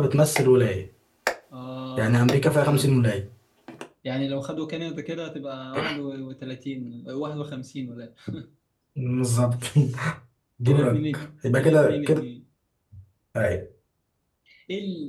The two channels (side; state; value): both; identical; correlation 1.00